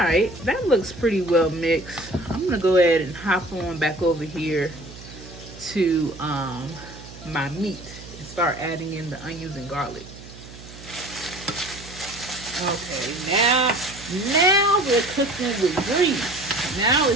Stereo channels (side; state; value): right; noise; hum, 16 dB below the sound